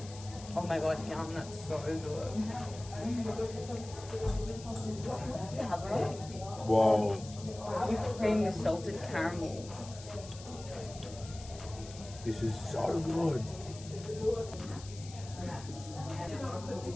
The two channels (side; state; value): left; noise; hiss, 16 dB below the sound